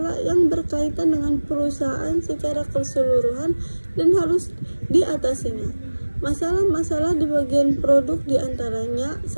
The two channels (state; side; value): inverted; both; correlation -1.00